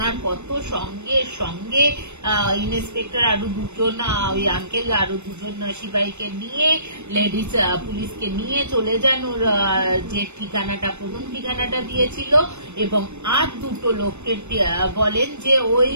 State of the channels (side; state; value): left; late; 0.82 ms